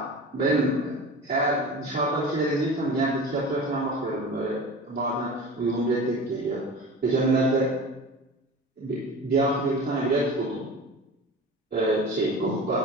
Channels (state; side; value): normal; both; correlation 0.35